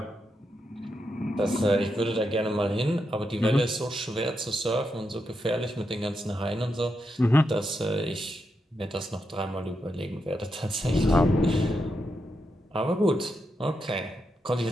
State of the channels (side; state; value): both; normal; correlation 0.84